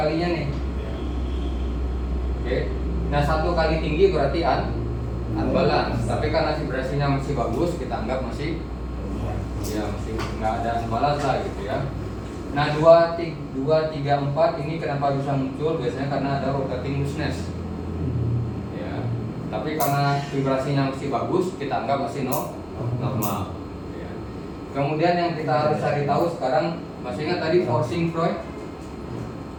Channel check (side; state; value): both; identical; correlation 1.00